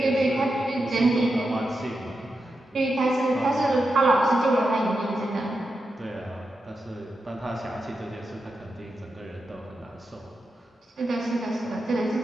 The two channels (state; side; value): normal; both; correlation 0.88